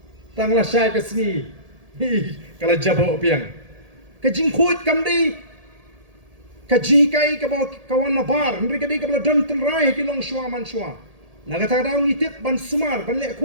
tang la syai ka singi, kalau jabo piang, kejing coach kamdei, kajikai ka bawa kawan nabar, mereka dei ka bela don tenrai ki long shua man shua, nak kata daun itip ban sumar ban lek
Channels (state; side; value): late; left; 1.8 ms